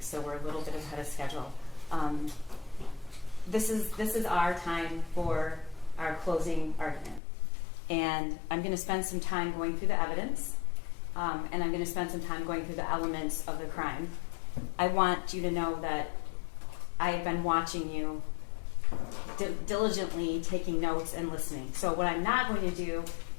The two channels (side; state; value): right; drops out; at 7.2 s